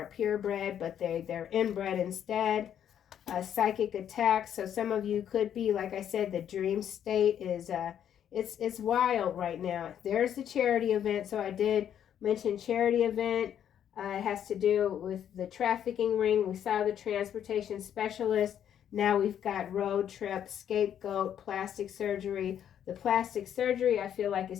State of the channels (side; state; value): right; quieter; 9.6 dB